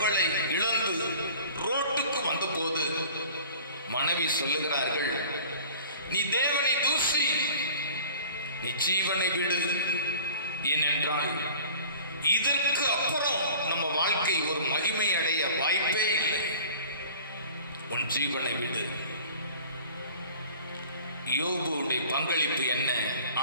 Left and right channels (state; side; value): inverted; both; correlation -0.44